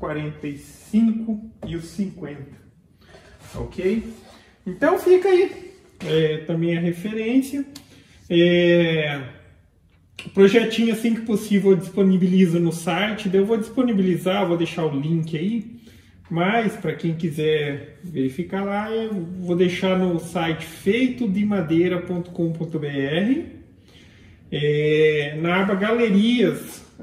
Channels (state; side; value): identical; both; correlation 1.00